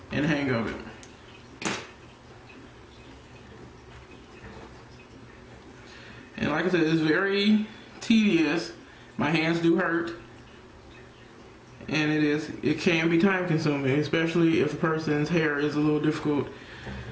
and hang of it. And like I said, it's very tedious. My hands do hurt. And it can be time consuming, especially if the person's hair is a little difficult,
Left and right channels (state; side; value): identical; both; correlation 1.00